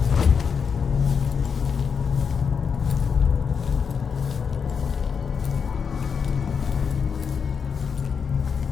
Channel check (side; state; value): right; quieter; 6.3 dB